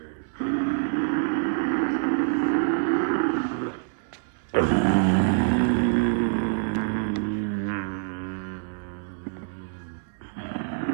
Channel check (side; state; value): left; silent; digital silence